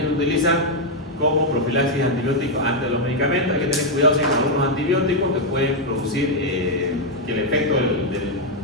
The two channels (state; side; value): normal; both; correlation 0.00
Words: se utilizan como profilaxis antibiótica antes de los medicamentos. Hay que tener cuidado si con los antibióticos que pueden producir que el efecto